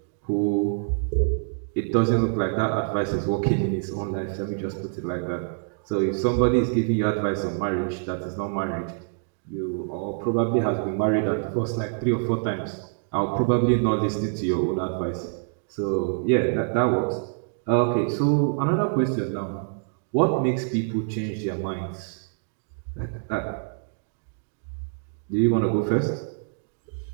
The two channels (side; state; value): left; silent; digital silence